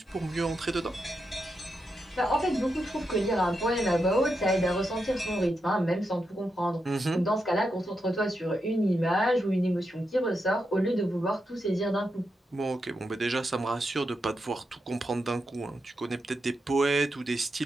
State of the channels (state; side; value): normal; both; correlation 0.85